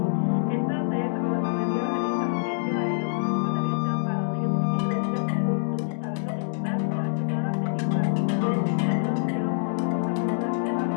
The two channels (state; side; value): silent; right; digital silence